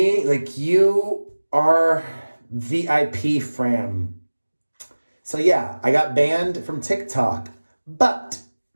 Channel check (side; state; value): both; inverted; correlation -1.00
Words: like you are VIP fam. So yeah, I got banned from TikTok, but